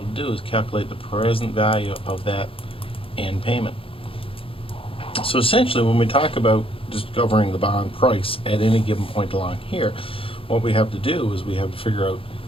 to do is calculate the present value of that end payment. So essentially, when we talk about discovering the bond price at any given point along here, what we have to do is we have to figure out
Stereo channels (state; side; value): late; right; 0.27 ms